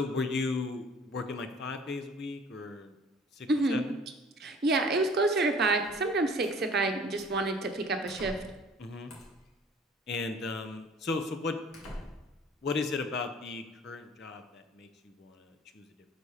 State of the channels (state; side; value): normal; both; correlation 0.50